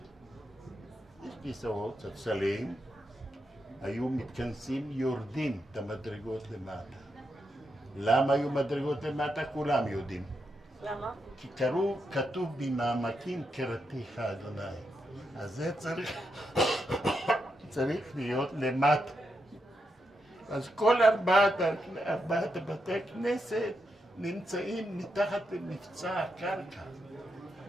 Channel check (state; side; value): normal; both; correlation 0.84